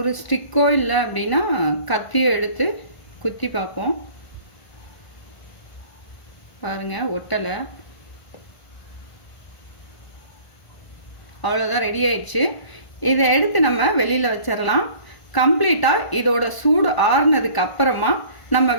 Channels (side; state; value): right; late; 1.5 ms